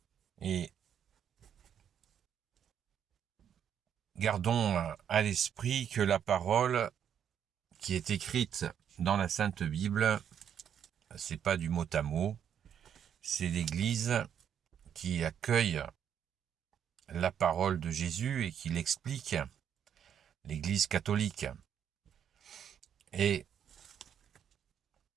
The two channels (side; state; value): left; quieter; 8.8 dB